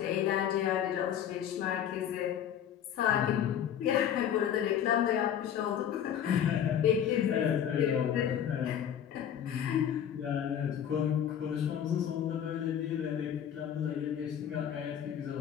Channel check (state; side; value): quieter; right; 9.4 dB